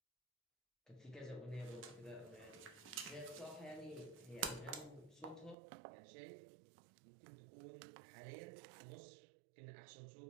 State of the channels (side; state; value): left; drops out; at 5.6 s